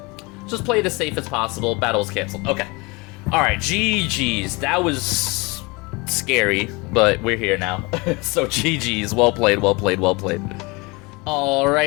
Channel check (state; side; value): quieter; right; 26.3 dB